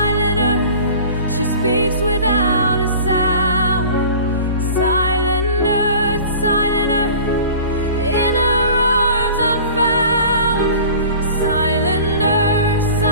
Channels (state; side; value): inverted; both; correlation -0.42